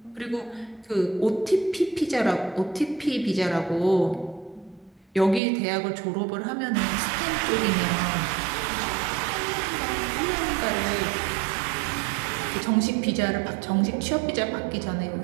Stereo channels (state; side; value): drops out; left; at 5.4 s